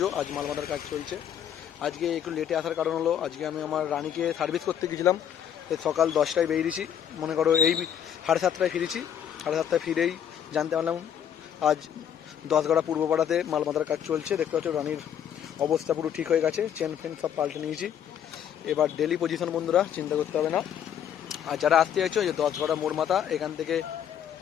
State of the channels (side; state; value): right; quieter; 9.2 dB